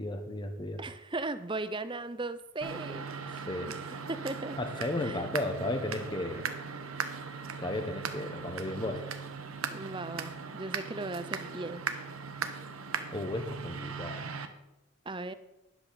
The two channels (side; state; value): both; normal; correlation 0.40